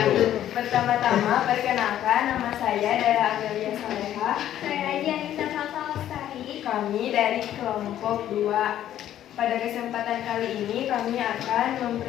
Pertama-tama, perkenalkan, nama saya Dara Amelia Saleha. Saya Aji Anissa Salsa Lestari. Kami dari kelompok 2. Pada kesempatan kali ini kami akan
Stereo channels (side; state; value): right; quieter; 11.7 dB